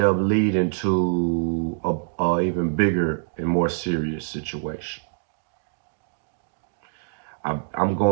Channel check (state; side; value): silent; left; digital silence